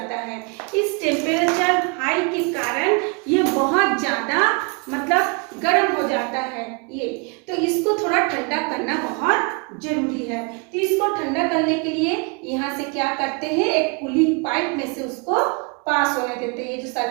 है। इस टेम्परेचर हाई के कारण ये बहुत ज्यादा मतलब गर्म हो जाता है ये। तो इसको थोड़ा ठंडा करना बहुत जरूरी है। तो इसको ठंडा करने के लिए यहाँ से क्या करते हैं, एक कूलिंग पाइप में से उसको पास होने देते हैं। ये जो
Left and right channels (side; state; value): left; quieter; 32.6 dB